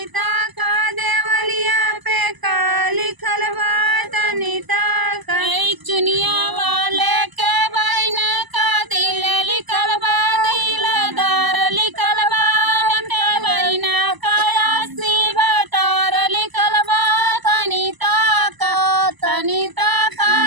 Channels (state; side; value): late; left; 1.0 ms